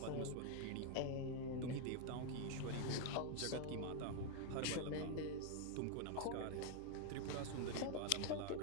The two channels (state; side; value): different; both; correlation 0.00